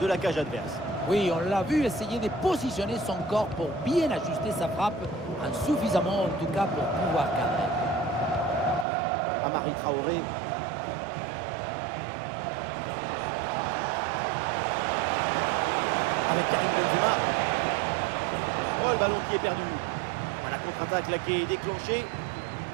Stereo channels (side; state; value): left; drops out; at 8.8 s